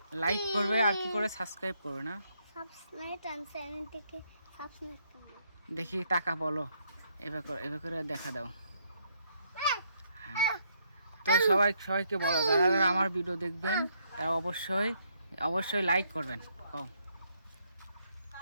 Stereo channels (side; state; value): both; inverted; correlation -0.73